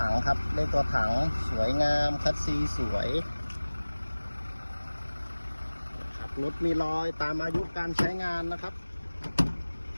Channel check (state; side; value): inverted; both; correlation -1.00